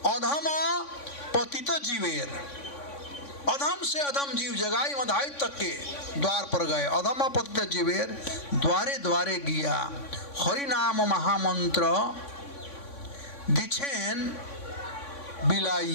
अधम पतित जीवेर, अधम से अधम जीव जगाई मधाई तक के द्वार पर गए। अधम पतित जीवेर द्वारे द्वारे गिया, हरि नाम महामंत्र दीक्षेन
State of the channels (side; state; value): right; late; 3.6 ms